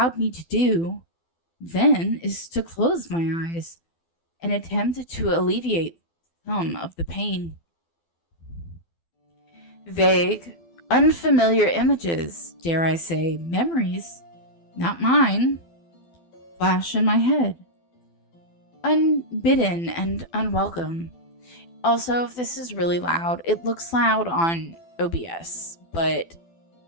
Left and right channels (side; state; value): right; late; 12 ms